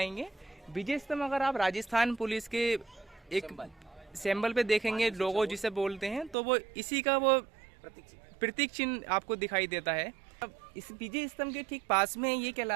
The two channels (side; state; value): left; drops out; at 6.4 s